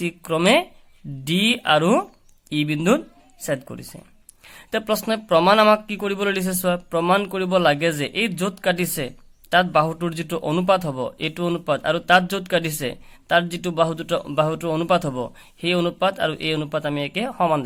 ক্ৰমে ডি আৰু ই বিন্দুত ছেদ কৰিছে। প্ৰশ্নই প্ৰমাণ আমাক কি কৰিবলৈ দিছে চোৱা, প্ৰমাণ কৰিব লাগে যে এই য'ত কাটিছে তাত বাহুটোৰ যিটো অনুপাত হ'ব, এইটো অনুপাত, আৰু তাত য'ত কাটিছে তাত যিটো বাহুটোৰ অনুপাত হ'ব, সেই অনুপাত আৰু এই অনুপাত আমি একে সমান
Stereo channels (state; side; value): identical; both; correlation 1.00